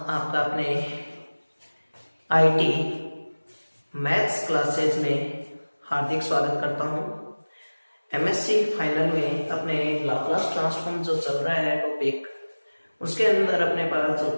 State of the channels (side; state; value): both; inverted; correlation -1.00